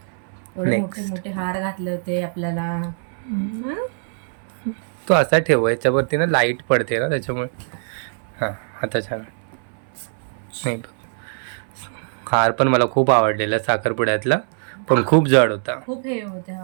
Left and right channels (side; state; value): left; silent; 64 dB below the other